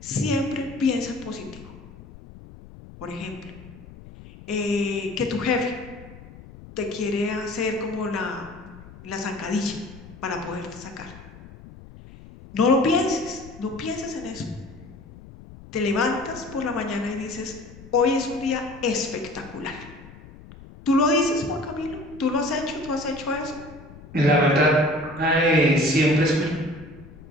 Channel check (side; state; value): left; noise; rumble, 18 dB below the sound